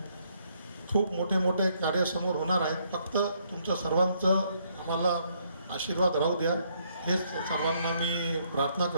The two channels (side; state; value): both; inverted; correlation -0.71